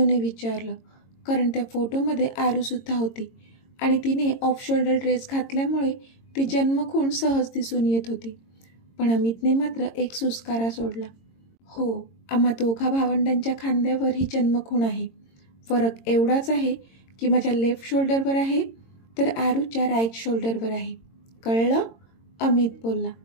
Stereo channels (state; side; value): late; right; 22 ms